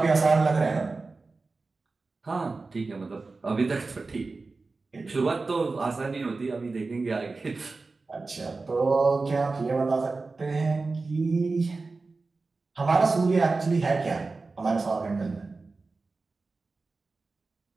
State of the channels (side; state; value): left; quieter; 3.8 dB